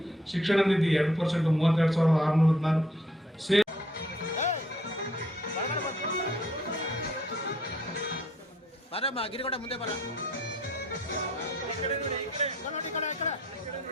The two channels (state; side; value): normal; both; correlation 0.64